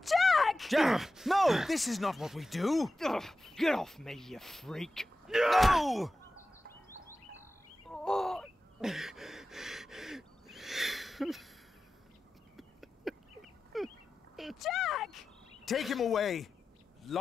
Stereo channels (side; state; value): both; normal; correlation 0.94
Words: Jack! Jack! No! This is not what we do! Ugh, get off me, you freak! No! Oh. Jack! Take him away!